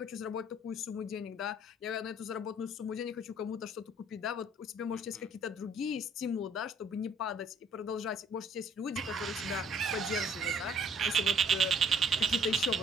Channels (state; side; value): normal; both; correlation 0.60